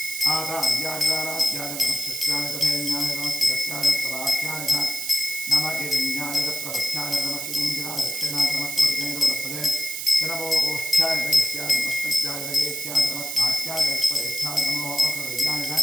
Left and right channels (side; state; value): right; noise; hiss, 5 dB below the sound